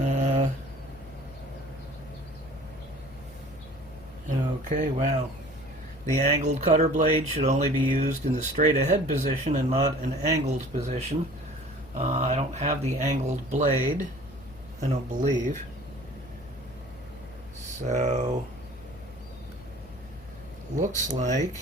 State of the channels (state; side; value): noise; left; hum, 20 dB below the sound